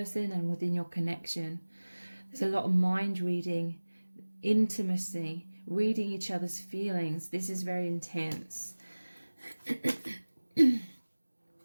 and within your connection. There's a lot of mind reading, intimacy, reading each other's feelings. This is very intense.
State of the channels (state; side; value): inverted; both; correlation -1.00